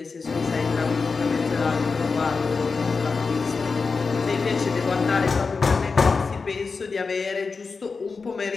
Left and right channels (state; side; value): quieter; right; 4.6 dB